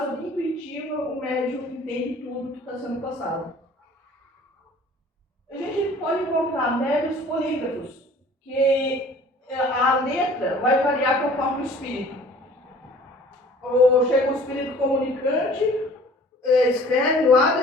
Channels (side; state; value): both; normal; correlation 0.50